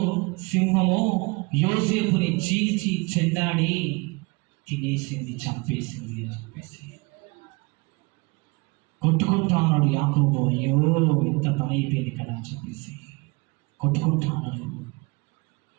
సింహమో యోసేపుని చీల్చి చెండాడి తినేసింది, చంపేసింది అని చెప్పేసి కొట్టుకుంటా ఉన్నాడు యాకోబు. అయ్యో ఎంత పని అయిపోయింది కదా అని చెప్పేసి కొట్టుకుంటా ఉన్నాడు.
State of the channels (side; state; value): left; quieter; 27.0 dB